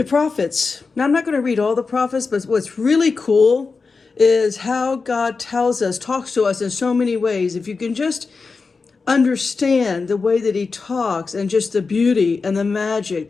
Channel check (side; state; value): right; quieter; 4.5 dB